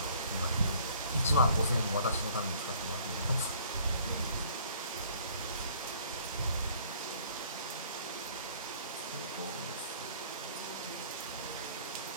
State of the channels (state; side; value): inverted; both; correlation -0.56